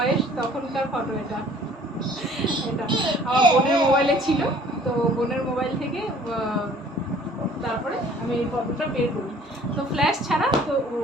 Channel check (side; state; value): both; normal; correlation 0.54